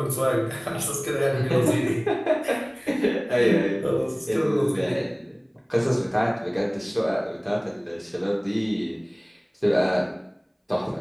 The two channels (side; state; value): both; identical; correlation 1.00